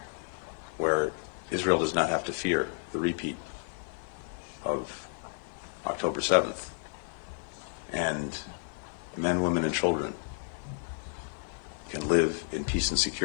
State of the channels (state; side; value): silent; right; 57 dB below the other